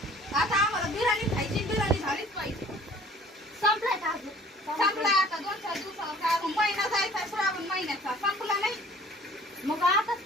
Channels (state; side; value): normal; both; correlation 0.51